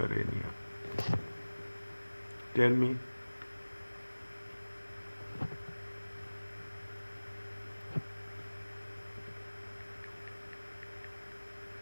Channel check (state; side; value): inverted; both; correlation -1.00